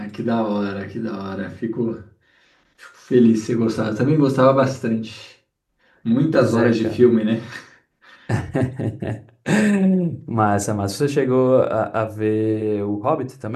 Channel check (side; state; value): both; identical; correlation 1.00